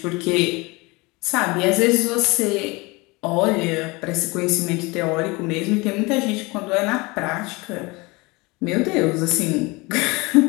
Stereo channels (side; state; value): right; quieter; 24.9 dB